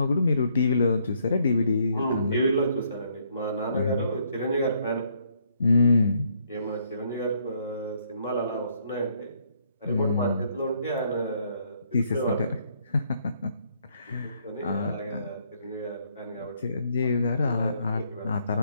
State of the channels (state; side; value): inverted; both; correlation -0.70